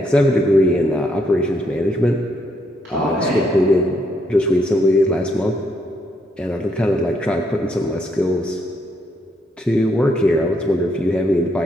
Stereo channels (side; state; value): both; normal; correlation 0.75